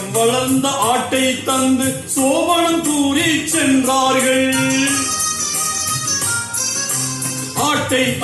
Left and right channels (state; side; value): identical; both; correlation 1.00